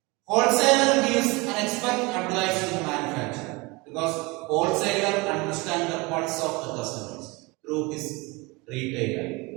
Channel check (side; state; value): left; quieter; 25.3 dB